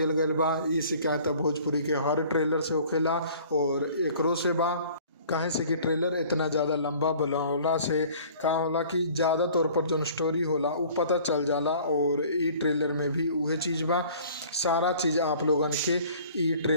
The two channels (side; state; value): both; inverted; correlation -0.50